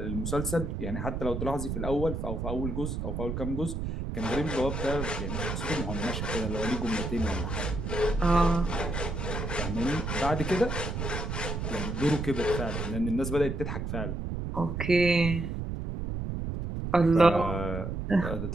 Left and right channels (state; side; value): noise; right; rumble, 3 dB below the sound